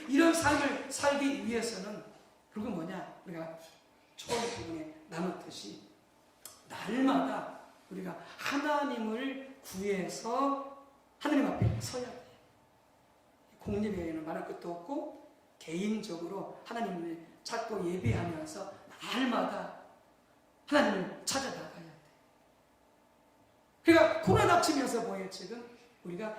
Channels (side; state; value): both; identical; correlation 1.00